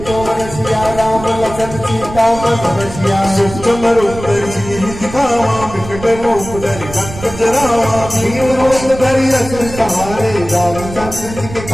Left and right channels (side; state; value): right; noise; rumble, 12 dB below the sound